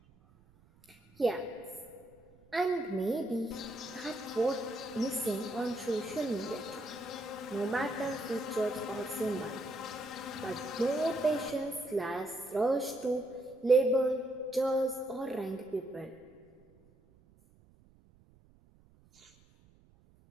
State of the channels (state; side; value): noise; right; rumble, 28 dB below the sound